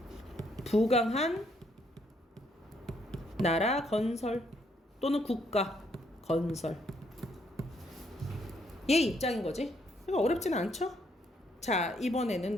부강한 나라 건설 또는 국가 건설. 얘 입장인 거지. 그러니까 어렵진 않죠? 자,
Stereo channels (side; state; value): both; normal; correlation 0.71